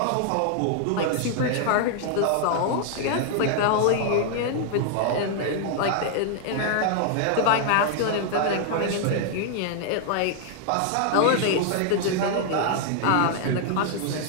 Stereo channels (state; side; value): different; both; correlation 0.00